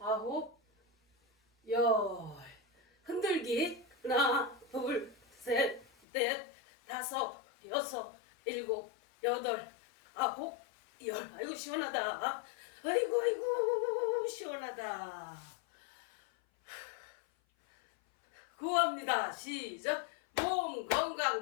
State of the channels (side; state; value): right; drops out; at 5.9 s